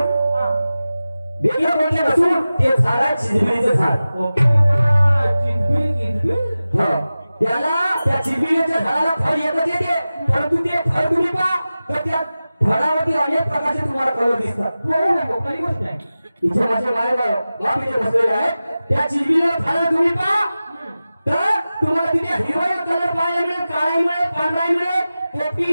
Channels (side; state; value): both; inverted; correlation -0.95